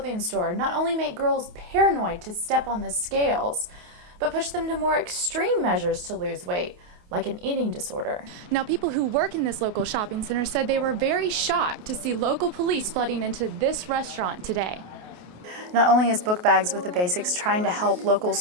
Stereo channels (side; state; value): left; late; 28 ms